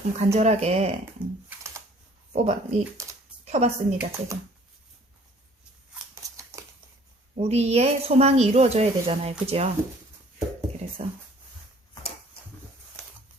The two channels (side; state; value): both; normal; correlation 0.55